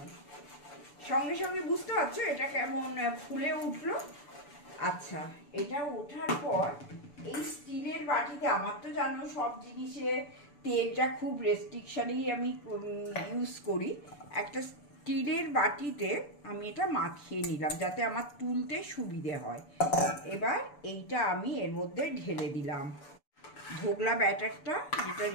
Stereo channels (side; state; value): right; late; 6.9 ms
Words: সঙ্গে সঙ্গে বুঝতে পারছো এটা কেমন ফুলে উঠলো। আচ্ছা, এটা ওঠার পর এই স্টিলের বাটিতে, আমার তো জানো সব জিনিসে তেলটা খুব রেস্ট্রিকশনেই আমি ইউজ করি, একটা স্টিলের বাটিতে আমি এটা মাখিয়ে নিলাম যাতে আমার তুলতে সুবিধে হয়। এবার এইটা আমি এর মধ্যে ঢেলে দিলাম, ধোকলা ব্যাটারটা যেটা